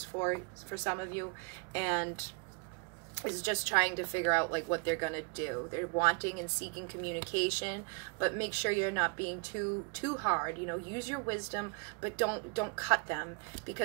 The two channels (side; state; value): left; quieter; 34.0 dB